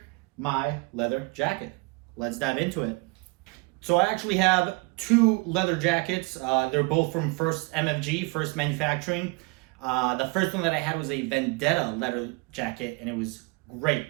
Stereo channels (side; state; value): left; quieter; 26.8 dB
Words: my leather jacket. Let's dive into it. So I actually have two leather jackets. They're both from MFG, First Manufacturing. The first one that I had was a Vendetta leather jacket, and it was great.